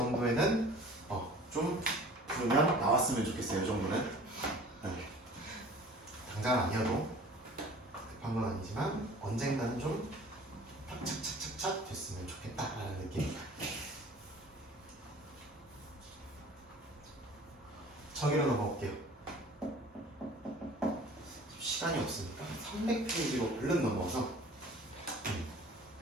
좀 그러면 나왔으면 좋겠어요. 이 정도는. 당장은 아니어도 급한 건 아니지만 언젠가는 좀 착착착착착 됐으면 좋겠다라는 느낌입니다. 저기로 넘어올게요. 시간이 없으니까 300페이지로 얼른 넘어와서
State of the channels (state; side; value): normal; both; correlation 0.46